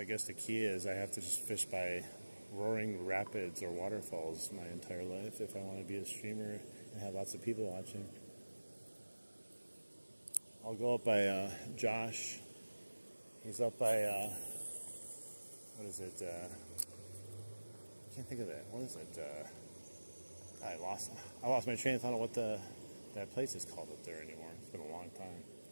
I guess the key is I have to just fish by roaring rapids or waterfalls my entire life if I want to be a streamer and have lots of people watching. I'll go up by Josh. He's up by what is it? I can't think of that. What is it? I lost my train of thought of what that place is called up there anymore. It's been a long time.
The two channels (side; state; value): both; inverted; correlation -1.00